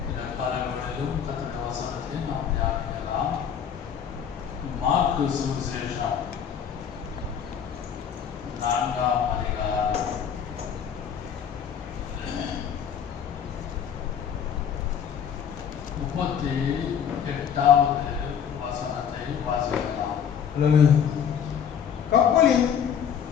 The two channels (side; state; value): right; quieter; 8.0 dB